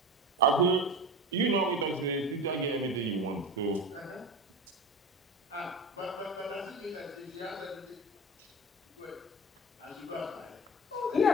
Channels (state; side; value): normal; both; correlation 0.29